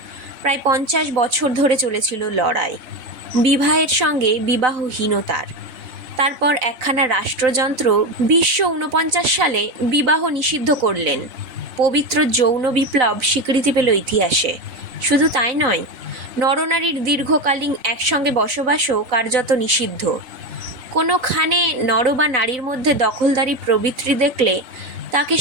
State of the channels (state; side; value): late; left; 3.9 ms